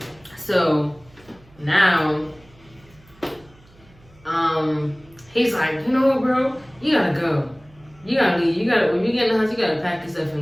So, now, he's like, you know what, bro? You gotta go. You gotta leave. When you get in the house, you gotta pack yourself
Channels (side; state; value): right; noise; hum, 27 dB below the sound